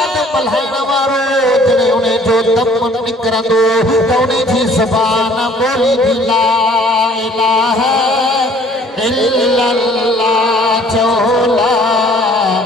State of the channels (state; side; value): normal; both; correlation 0.56